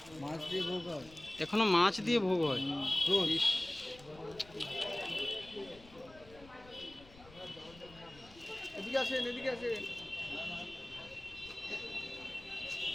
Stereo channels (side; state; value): left; noise; rumble, 22 dB below the sound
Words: মাছ দিয়ে ভোগ হয় এখনো মাছ দিয়ে ভোগ হয়। রোজ। ইস, এদিকে আসেন, এদিকে আসেন।